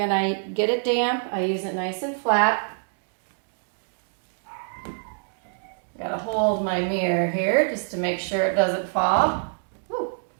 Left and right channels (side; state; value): left; silent; digital silence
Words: I get it damp, I use it nice and flat. Got to hold my mirror here just to make sure it doesn't fall.